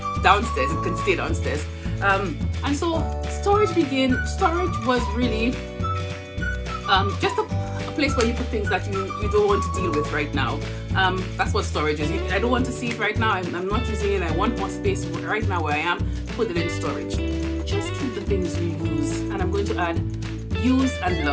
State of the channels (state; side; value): identical; both; correlation 1.00